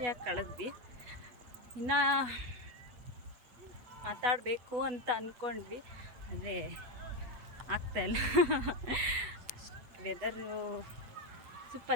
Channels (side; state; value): left; late; 8.2 ms